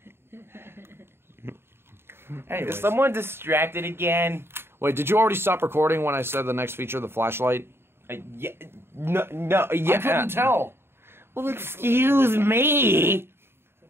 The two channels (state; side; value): late; left; 0.11 ms